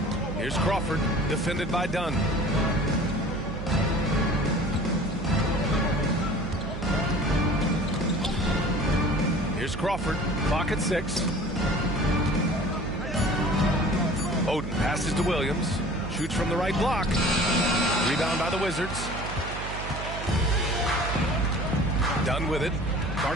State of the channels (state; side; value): noise; right; hum, 8 dB below the sound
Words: Here's Crawford, defended by Dunn. Here's Crawford, clock at 6. Oden passes to Williams, shoots from the right block. Rebound by the Wizards. Dunn with it.